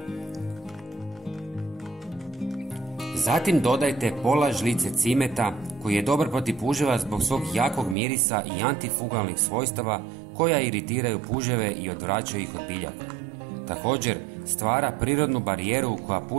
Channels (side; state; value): left; drops out; at 8.0 s